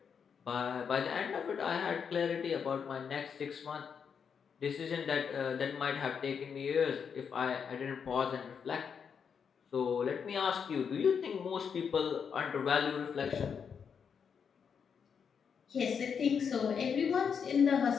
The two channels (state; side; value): quieter; right; 6.8 dB